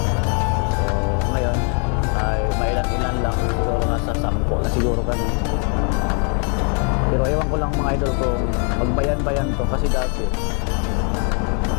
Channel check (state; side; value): quieter; right; 39.8 dB